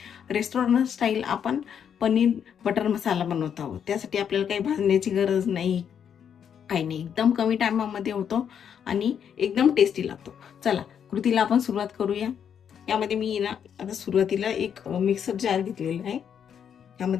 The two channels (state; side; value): quieter; right; 8.1 dB